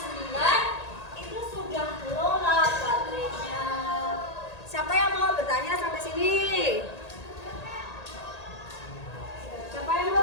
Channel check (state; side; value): late; right; 1.8 ms